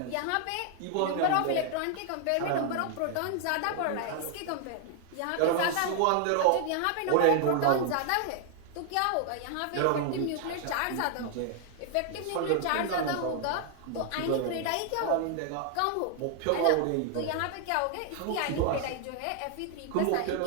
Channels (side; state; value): both; different; correlation 0.00